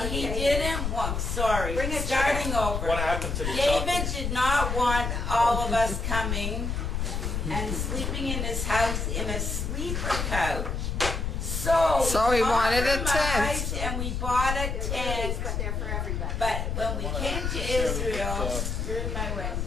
he David. didn't want, sorry, Bring it starting over. What happened to the David chocolate? did not want all of us coming and sleeping in his house in a sleeper couch. So he wanted a tent. compromised And we bought a tent. But they're for everybody. But when we came to Israel, you're in my way.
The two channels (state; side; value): noise; left; rumble, 2 dB below the sound